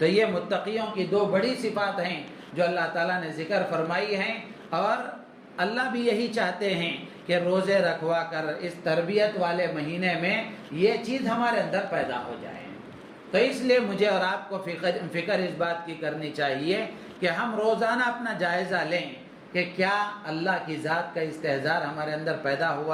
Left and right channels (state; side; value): identical; both; correlation 1.00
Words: یہ متقیوں کی دو بڑی صفات ہیں جو اللہ تعالیٰ نے ذکر فرمائی ہیں، اور اللہ بھی یہی چاہتے ہیں کہ روزے رکھوا کر اس تربیت والے مہینے میں یہ چیز ہمارے اندر پیدا ہو جائے۔ تو اس لیے مجھے اور آپ کو فکر اس بات کی کرنی چاہیے کہ ہم روزانہ اپنا جائزہ لیں کہ کیا اللہ کی ذات کا استحضار ہمارے اندر پیدا